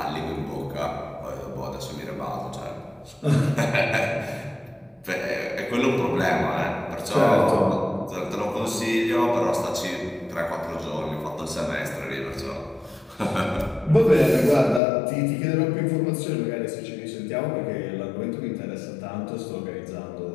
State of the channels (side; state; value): right; drops out; at 14.8 s